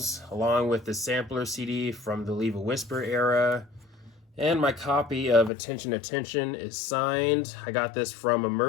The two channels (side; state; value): right; drops out; at 5.5 s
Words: along with the sampler CD from the Leave a Whisper era. And my copy of Attention Attention is signed. I got this from a